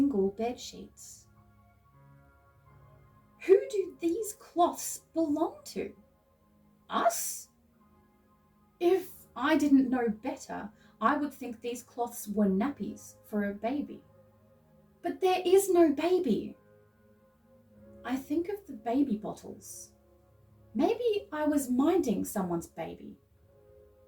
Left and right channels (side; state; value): both; identical; correlation 1.00